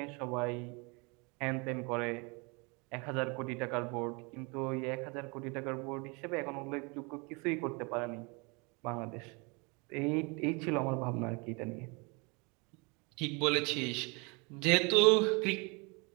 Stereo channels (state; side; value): quieter; left; 30.2 dB